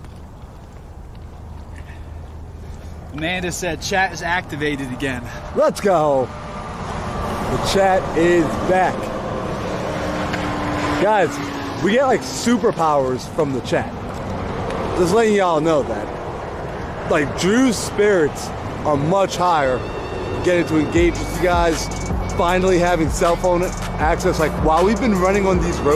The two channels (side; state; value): both; identical; correlation 1.00